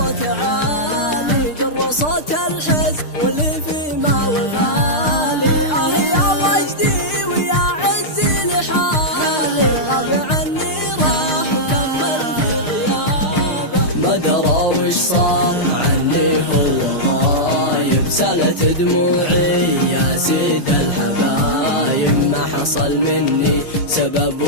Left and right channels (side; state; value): right; late; 6.6 ms